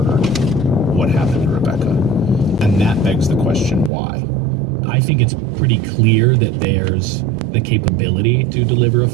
what happened to Rebecca. And that begs the question, why? I think it's pretty clear that there's the capability to deliver a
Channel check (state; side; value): drops out; left; at 3.9 s